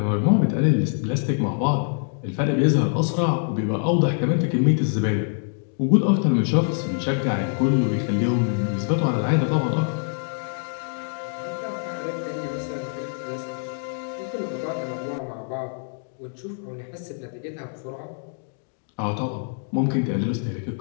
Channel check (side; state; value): right; silent; 62 dB below the other